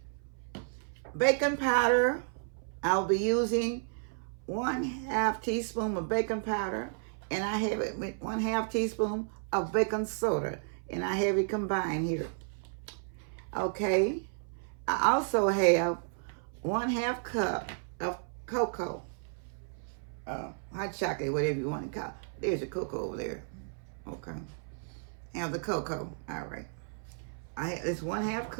Baking powder, I'll be using 1/2 teaspoon of baking powder, and I have it with 1/2 teaspoon of baking soda, and I have it combined here. Okay. I also have 1/2 cup of cocoa, hot chocolate, whatever you want to call it. There's a cocoa over there. Okay. Have the cocoa. All right. It's 1/2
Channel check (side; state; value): left; silent; 56 dB below the other